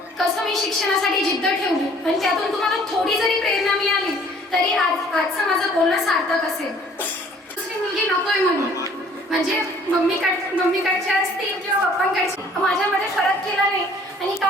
कसं मी शिक्षणासाठी जिद्द ठेवली आणि त्यातून तुम्हाला थोडी जरी प्रेरणा मिळाली तरी आजचं माझं बोलणं सार्थक असेल. दुसरी मुलगी नकोय म्हणून, म्हणजे मम्मीकडच्या असतील किंवा पप्पांकडची, माझ्यामध्ये फरक केला नाही आणि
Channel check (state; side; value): normal; both; correlation 0.55